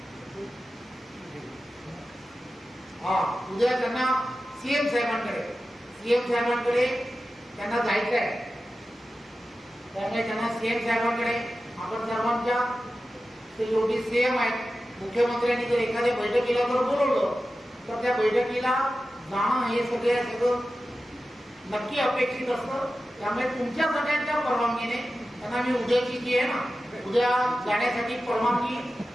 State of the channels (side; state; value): both; normal; correlation 0.93